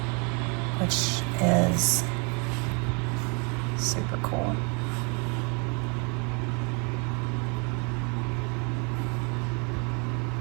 which is super cool.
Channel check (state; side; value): quieter; left; 33.8 dB